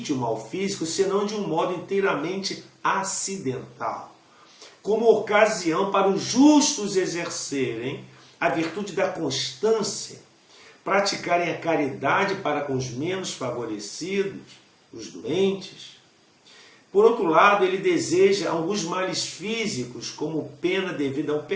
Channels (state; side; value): identical; both; correlation 1.00